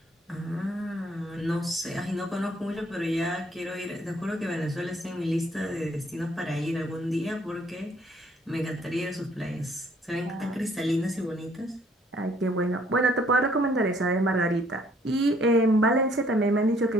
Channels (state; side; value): normal; both; correlation 0.63